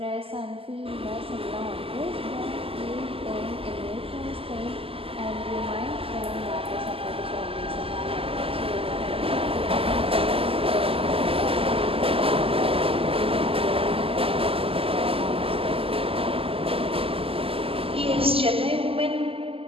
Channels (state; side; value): late; left; 0.27 ms